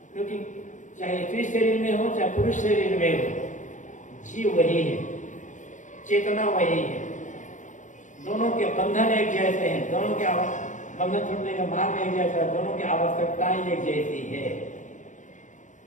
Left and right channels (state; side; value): late; right; 0.36 ms